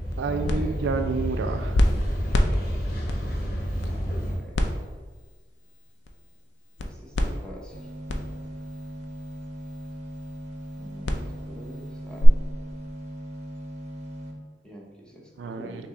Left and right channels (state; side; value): normal; both; correlation 0.90